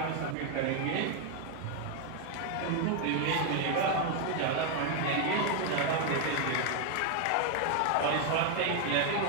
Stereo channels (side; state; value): both; different; correlation 0.01